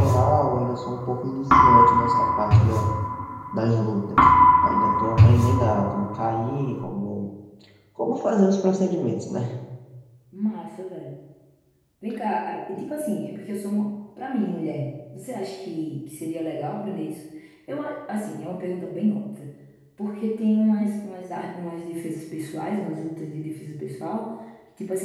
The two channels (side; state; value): both; identical; correlation 1.00